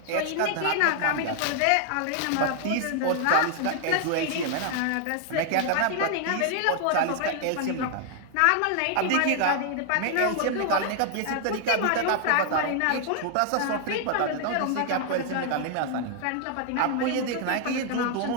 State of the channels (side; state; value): both; different; correlation 0.00